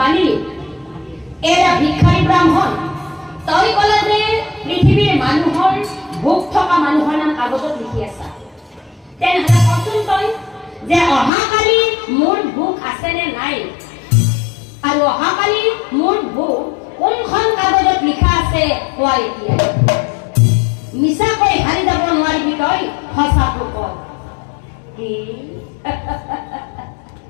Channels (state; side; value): drops out; right; at 11.3 s